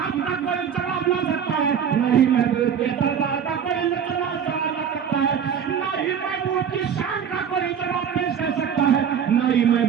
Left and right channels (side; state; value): left; quieter; 7.9 dB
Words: کا کوئی جواب لا سکتا ہے، نہیں محبوب کے دربار کا کوئی جواب لا سکتا ہے، نہیں محبوب کی شان کا کوئی جواب پیش کر سکتا ہے، نہیں